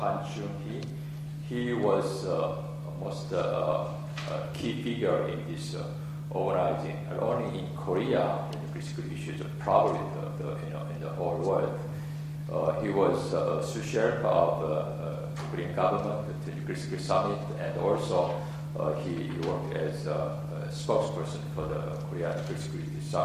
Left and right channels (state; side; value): identical; both; correlation 1.00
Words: Chung-hee. He was almost a key figure in this organizing, not only in Korea, in nuclear security issues, but probably in the whole world. He was a sous chef of the Korean government at the Nuclear Security Summit, and also he worked as a spokesperson for the Korean Nuclear Security